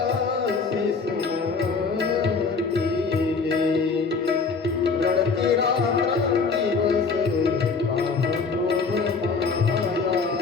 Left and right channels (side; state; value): right; quieter; 4.8 dB